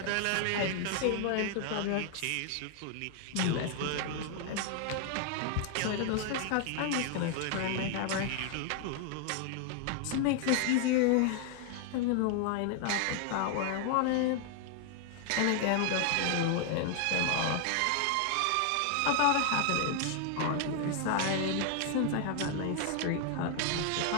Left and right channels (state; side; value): different; both; correlation 0.00